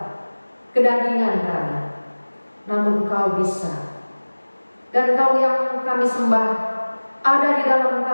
kedagingan kami, namun Engkau bisa. Dan Engkau yang kami sembah ada di dalam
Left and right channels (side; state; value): both; inverted; correlation -1.00